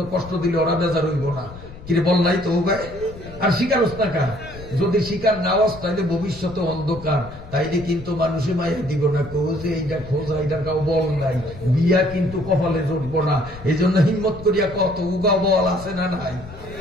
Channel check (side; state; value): left; noise; rumble, 15 dB below the sound